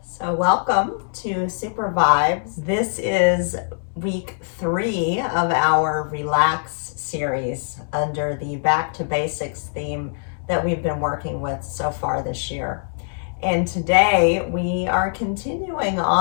So welcome to Super Vibes. This is week 3 of our Relax series under the Back to Basics theme that we've been working with so far this year. And today we are continuing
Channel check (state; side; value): silent; right; digital silence